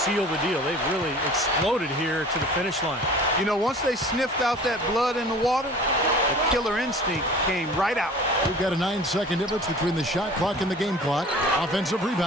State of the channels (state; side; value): normal; both; correlation 0.44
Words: the deal. They've really exploded here to the finish line. You know, once they sniffed out that blood in the water, the killer instinct came right out. We've got a 9-second difference between the shot clock and the game clock. Offensive